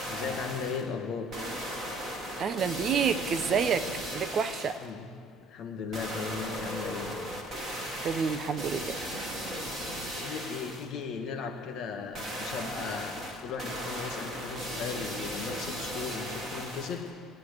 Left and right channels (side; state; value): both; normal; correlation 0.54